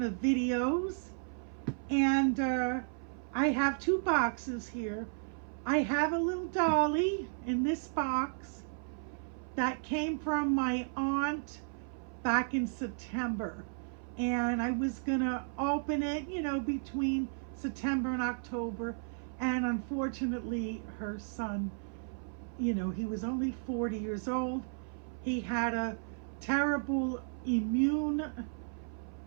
of videos, and I have two boxes here. I have a little Dolly in this box that came from my aunt back in September, and I was gonna open it, between September and October, and unfortunately her son, he was only 40 years old. He had a terrible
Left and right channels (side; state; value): left; silent; 55 dB below the other